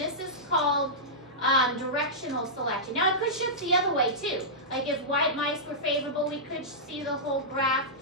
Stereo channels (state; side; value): normal; both; correlation -0.13